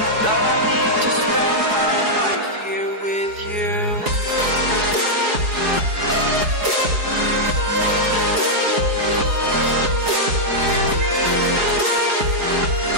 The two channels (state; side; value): late; left; 4.7 ms